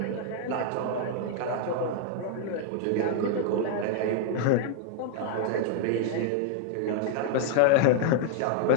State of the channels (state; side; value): different; both; correlation 0.00